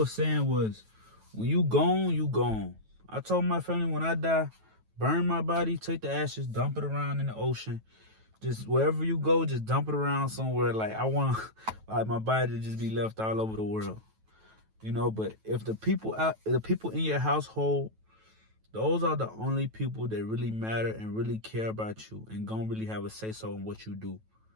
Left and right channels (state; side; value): late; left; 9.2 ms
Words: saying was, when you gone, you gone. I told my family when I die, burn my body, take the ashes, dump it around in the ocean. Just wherever you go, just dump it around somewhere. Like, I want like my body to just be left all over the world. You know, but if the people in your household, those are the only people that really matter and really care about you and gonna really have a say-so in what you do.